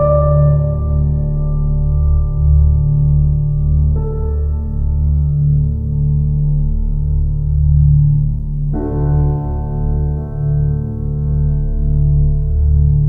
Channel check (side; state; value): both; identical; correlation 1.00